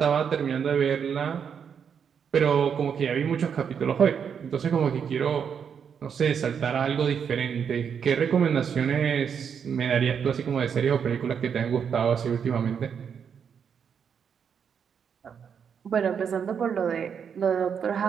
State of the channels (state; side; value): quieter; left; 7.3 dB